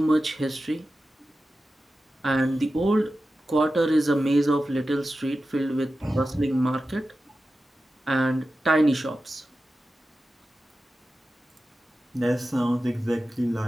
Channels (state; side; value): normal; both; correlation 0.93